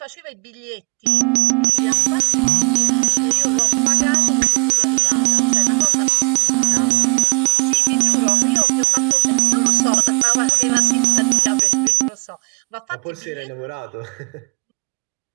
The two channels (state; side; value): quieter; left; 34.1 dB